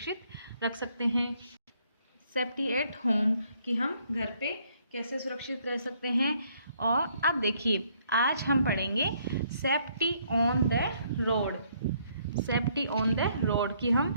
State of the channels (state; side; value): inverted; both; correlation -0.68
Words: रख सकते हैं। सेफ्टी एट होम कि हम घर पे कैसे सुरक्षित रह सकते हैं। और अब देखिए आज हम पढ़ेंगे safety on the road. Safety on the road कि